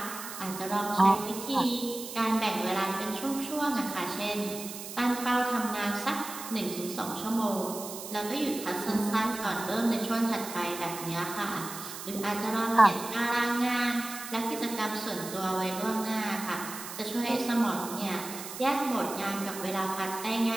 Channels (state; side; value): noise; right; hiss, 10 dB below the sound